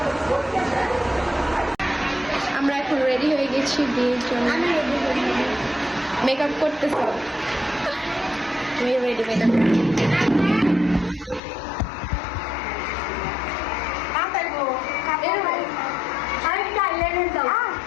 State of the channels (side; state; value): right; drops out; at 11.4 s